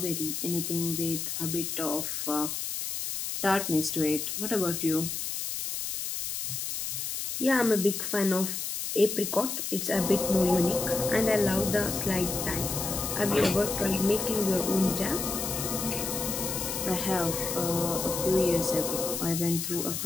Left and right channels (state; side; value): noise; left; hiss, 4 dB below the sound